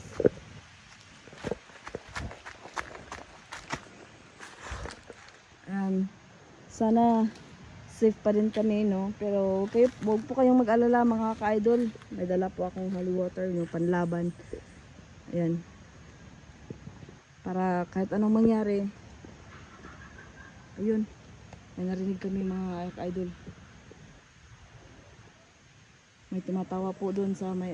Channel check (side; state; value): both; identical; correlation 1.00